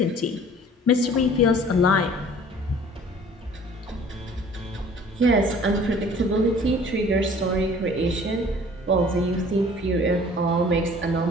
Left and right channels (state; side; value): normal; both; correlation 0.50